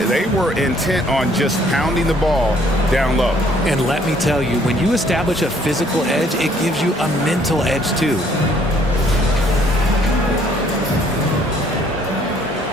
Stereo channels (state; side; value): normal; both; correlation 0.63